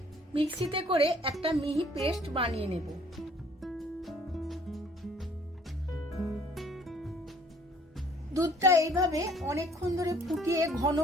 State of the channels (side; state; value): both; normal; correlation 0.58